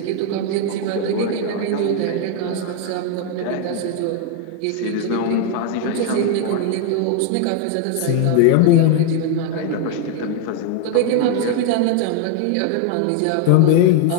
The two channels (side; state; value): both; different; correlation 0.01